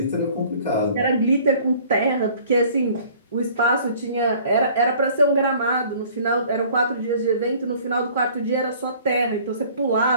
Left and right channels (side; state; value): both; inverted; correlation -0.52